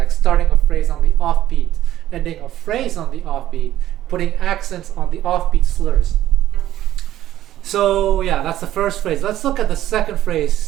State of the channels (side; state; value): left; quieter; 13.1 dB